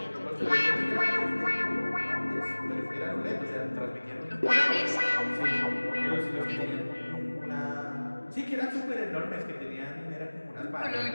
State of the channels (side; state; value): both; inverted; correlation -1.00